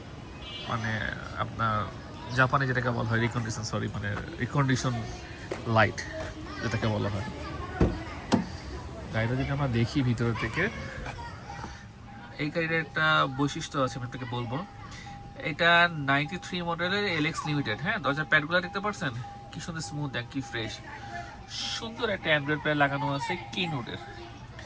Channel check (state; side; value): identical; both; correlation 1.00